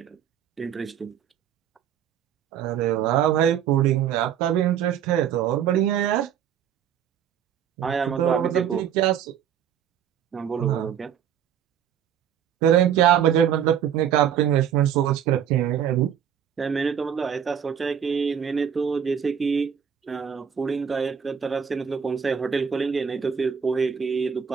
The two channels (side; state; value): left; quieter; 8.8 dB